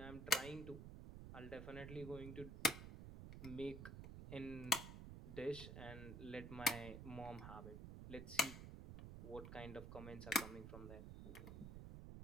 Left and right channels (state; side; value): noise; right; rumble, 8 dB below the sound